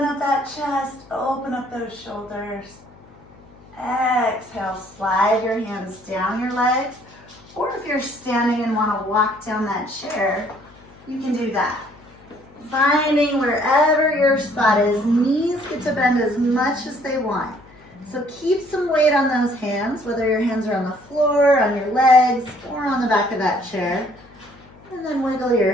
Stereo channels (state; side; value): noise; left; hum, 25 dB below the sound